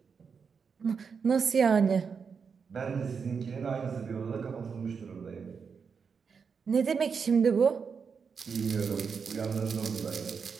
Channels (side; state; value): left; quieter; 5.9 dB